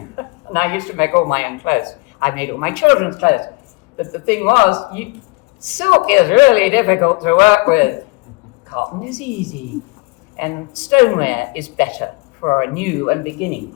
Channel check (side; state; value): right; quieter; 27.5 dB